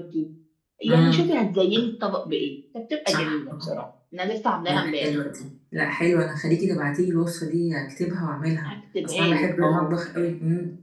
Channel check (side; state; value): both; identical; correlation 1.00